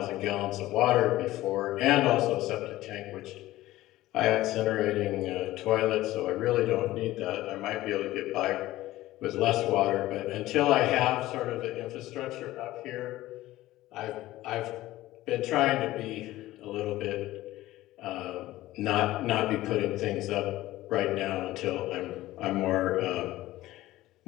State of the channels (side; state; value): right; quieter; 16.3 dB